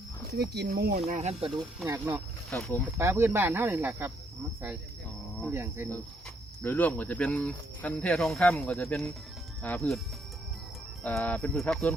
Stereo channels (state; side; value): normal; both; correlation 0.72